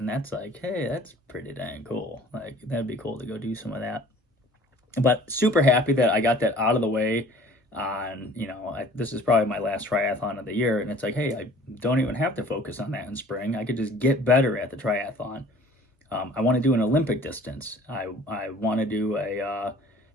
that's like, hey, that's pretty dang cool. Like, that'd be cool to go do some of that. But super happy that I got that out of the way. This is probably my last triathlon of the year, and it's like, hey, I don't even have to focus on that in spring. I could just get better at the triathlon. I want to do an Olympic distance. I want to do a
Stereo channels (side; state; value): both; normal; correlation 0.50